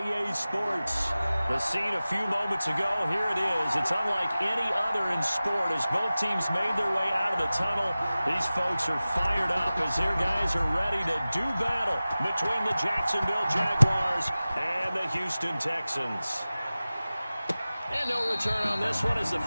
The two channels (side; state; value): both; inverted; correlation -0.97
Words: Sports. The scene a few moments ago, here it is. It's unlike any other in sport as both teams made their way out of the tunnel. These folks are fired up as their guys are ready to do battle between the Jacksonville Jaguars and the Houston Texans. And no return on this one as the